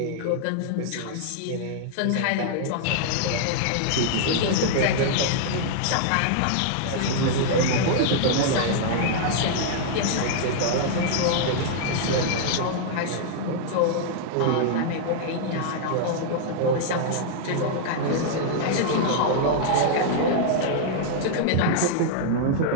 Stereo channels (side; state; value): both; different; correlation -0.01